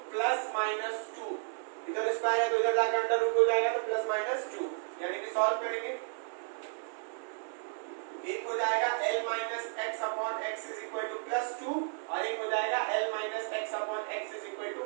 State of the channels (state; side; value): silent; left; digital silence